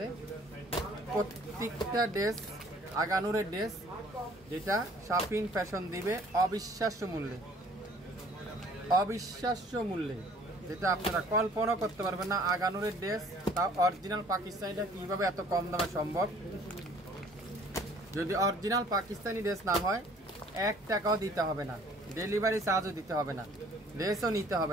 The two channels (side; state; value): both; normal; correlation 0.55